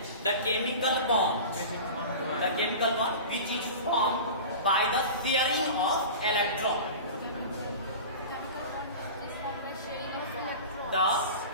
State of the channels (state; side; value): inverted; both; correlation -0.33